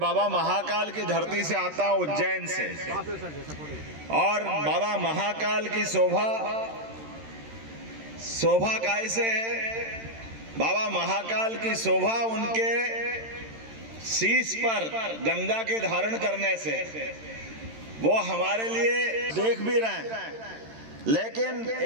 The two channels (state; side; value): late; left; 13 ms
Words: महाकाल की धरती से आता हूँ, उज्जैन से, और बाबा महाकाल की शोभा कैसे है? बाबा महाकाल की शोभा उनके शीश पर गंगा के धारण करने से, वो हमारे लिए देख भी रहे हैं। लेकिन